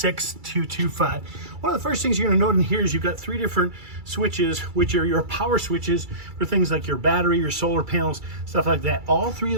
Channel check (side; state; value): left; late; 2.3 ms